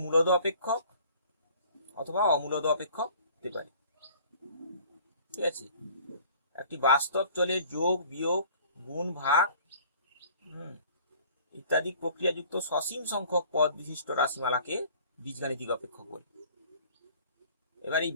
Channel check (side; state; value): both; inverted; correlation -0.51